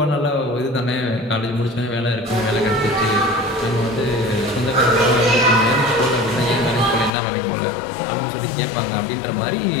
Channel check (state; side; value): drops out; right; at 7.1 s